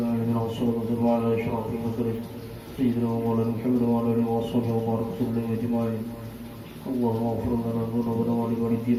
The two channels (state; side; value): identical; both; correlation 1.00